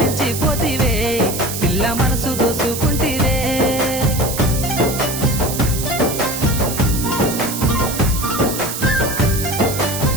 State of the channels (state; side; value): noise; right; hiss, 6 dB below the sound